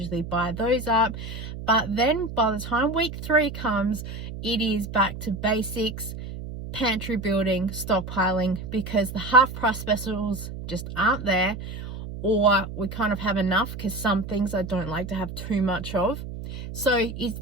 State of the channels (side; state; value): right; noise; hum, 9 dB below the sound